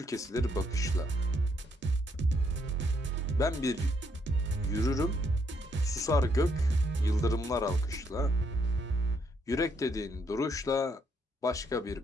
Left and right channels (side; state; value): both; normal; correlation 0.73